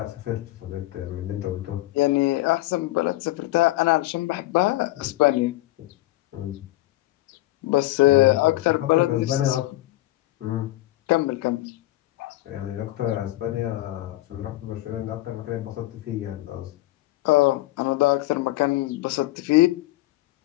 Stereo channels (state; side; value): quieter; right; 17.3 dB